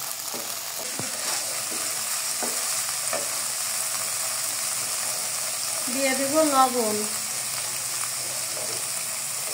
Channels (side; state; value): both; identical; correlation 1.00